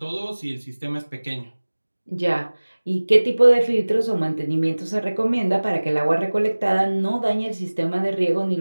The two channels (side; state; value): both; inverted; correlation -1.00